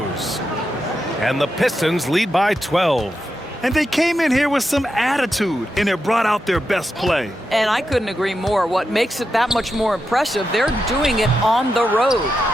And the Pistons lead by 12. And they came in here with some attitude, and it brought out their best play. And I couldn't agree more. What makes it that much more impressive, they're doing it on the road.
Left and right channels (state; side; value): normal; both; correlation 0.87